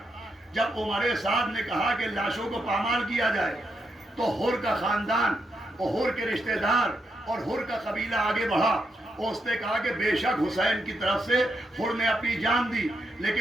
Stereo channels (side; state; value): both; normal; correlation 0.82